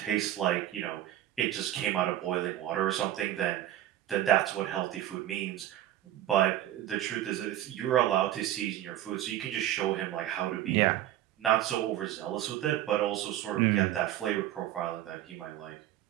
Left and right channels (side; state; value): left; quieter; 12.9 dB